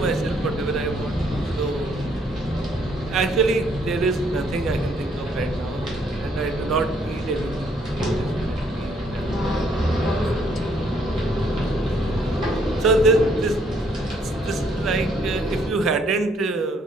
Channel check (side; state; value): both; normal; correlation 0.67